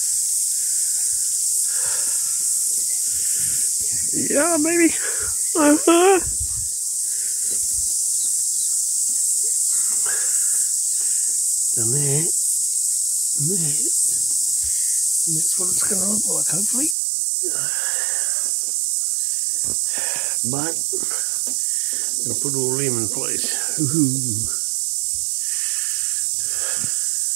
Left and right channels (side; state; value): left; drops out; at 16.9 s